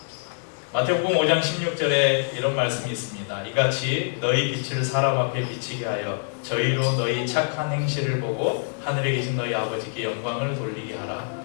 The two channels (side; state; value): right; silent; digital silence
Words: 마태복음 5장 16절에 이런 말씀이 있습니다. 이같이 너희 빛을 사람 앞에 비치게 하여 저희로 너희 착한 행실을 보고 하늘에 계신 너희 아버지께 영광을 돌리게 하라.